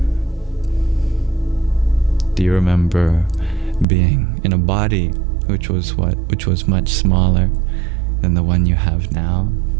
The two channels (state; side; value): drops out; left; at 3.9 s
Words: Do you remember being in a body which was much smaller than the one you have now?